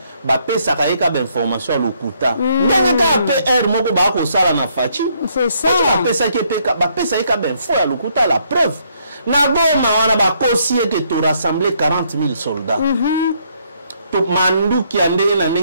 ba pesa ka eka ba information à lokuta ndenge ka PR moko ba ko sala na fachi c'est ça ba pesa ke peka ba pesa eka ba info à lokuta la preuve na goma wana ba kosie que to rassembler 40 000 soldats to mandu ki andenge na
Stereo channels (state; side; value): inverted; both; correlation -0.70